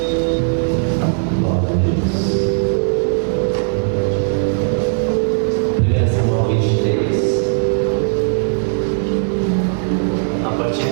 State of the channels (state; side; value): silent; left; digital silence